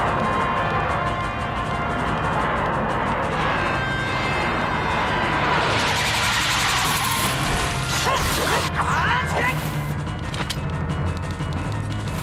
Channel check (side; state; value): both; identical; correlation 1.00